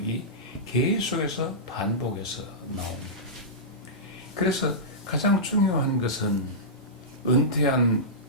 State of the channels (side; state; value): both; normal; correlation -0.16